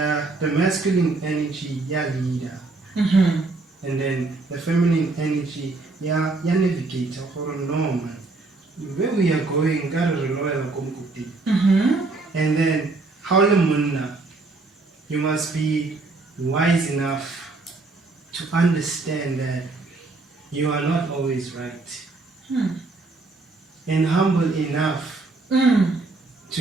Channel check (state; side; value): quieter; left; 3.5 dB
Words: masculine energy, yeah, leader, and then the feminine energy, yeah, navigator or normal. Where we are going, and then how you must be wise enough to understand that you are not always right, and humble enough